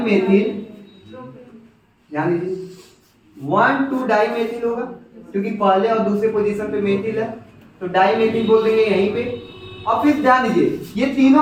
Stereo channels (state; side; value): identical; both; correlation 1.00